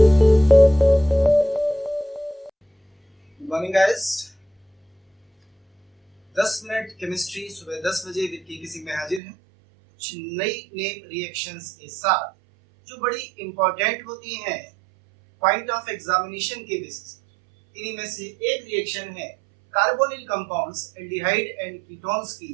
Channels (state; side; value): drops out; left; at 9.2 s